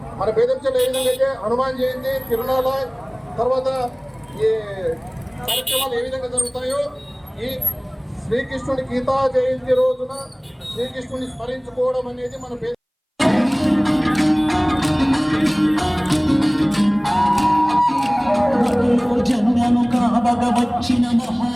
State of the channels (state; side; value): identical; both; correlation 1.00